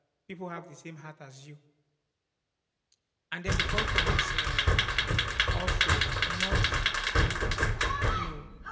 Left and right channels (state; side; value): identical; both; correlation 1.00